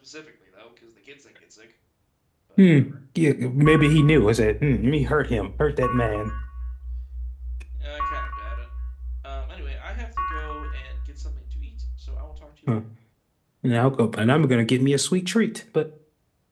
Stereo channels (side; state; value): both; identical; correlation 1.00